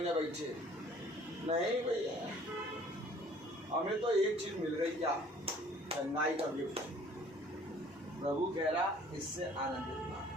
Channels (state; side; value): normal; both; correlation 0.54